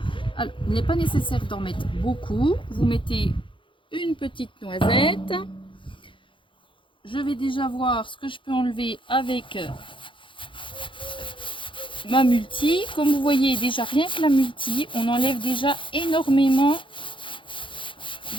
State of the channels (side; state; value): right; late; 0.25 ms